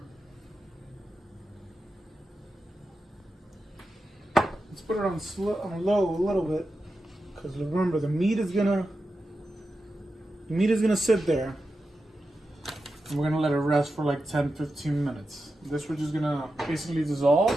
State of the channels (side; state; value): both; normal; correlation 0.90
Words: Let's put it on low a little bit, because remember the meat is gonna sit there, and we're gonna let it rest for like 10-15 minutes. This we're just gonna basically dissolve